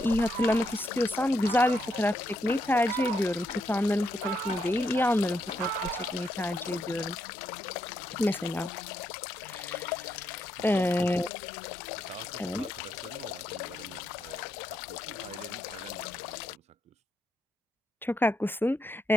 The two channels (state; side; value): normal; both; correlation 0.79